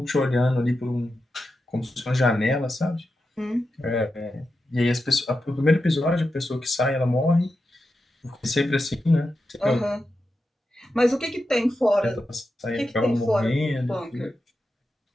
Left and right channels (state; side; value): normal; both; correlation 0.89